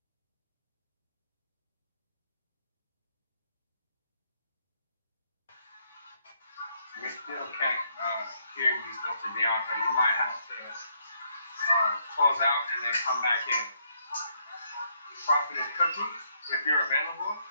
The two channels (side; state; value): both; inverted; correlation -0.72